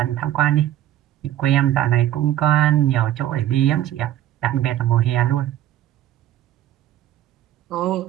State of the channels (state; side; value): quieter; left; 12.7 dB